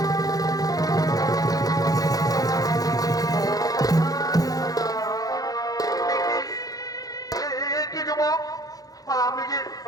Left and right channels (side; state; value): right; late; 0.18 ms